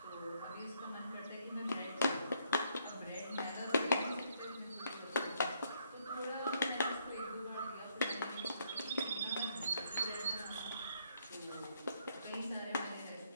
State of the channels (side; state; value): both; inverted; correlation -0.71